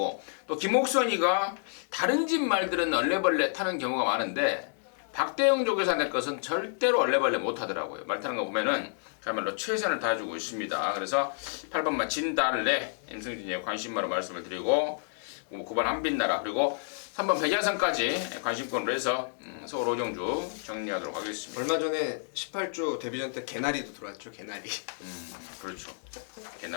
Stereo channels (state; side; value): silent; right; digital silence